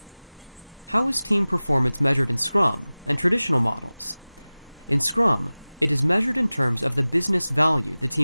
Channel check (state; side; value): inverted; both; correlation -0.98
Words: How is team performance measured in Scrum and traditional models? In Scrum, it is measured in terms of the business value the